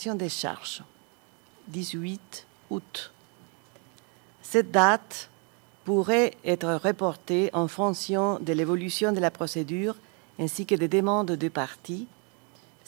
des charges. 18 août. Cette date pourrait être reporté en fonction de l'évolution de la procédure ainsi que des demandes de parties.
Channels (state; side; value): quieter; left; 35.6 dB